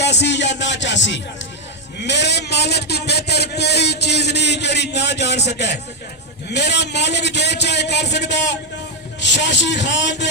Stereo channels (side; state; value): both; normal; correlation 0.03